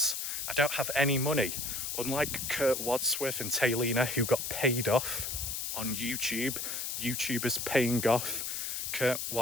I don't have any money. Unlike Kurt Wadsworth and Taylina, who got paid off on YouTube, YouTubers paying off Kurt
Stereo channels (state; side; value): noise; left; hiss, 3 dB below the sound